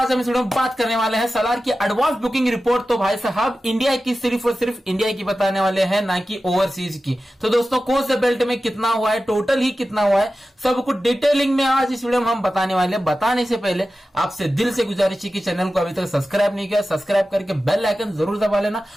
हम इस वीडियो में बात करने वाले हैं सलार की एडवांस बुकिंग रिपोर्ट। तो भाई साहब, इंडिया की सिर्फ और सिर्फ इंडिया की बताने वाले हैं, ना कि ओवरसीज की। तो दोस्तों, कौन से बेल्ट में कितना हुआ है, टोटल ही कितना हुआ है, सब कुछ डिटेलिंग में आज इस वीडियो में हम बताने वाले हैं। बताने से पहले आपसे दिल से गुजारिश है कि चैनल को अभी तक सब्सक्राइब नहीं किया, सब्सक्राइब करके बेल आइकन जरूर दबा लेना।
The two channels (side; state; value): both; normal; correlation 0.94